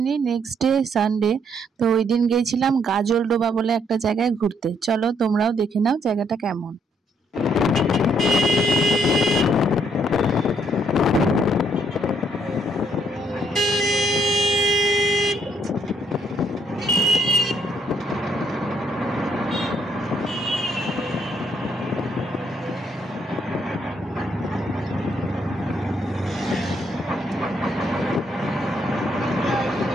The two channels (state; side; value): normal; both; correlation 0.70